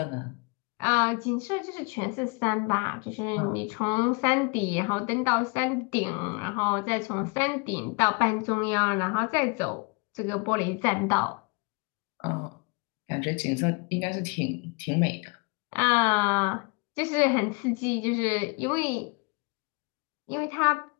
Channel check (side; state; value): right; quieter; 31.2 dB